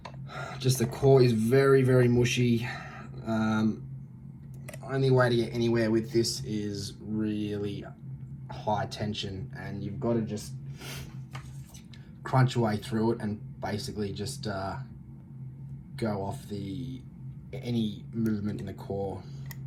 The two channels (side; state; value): both; identical; correlation 1.00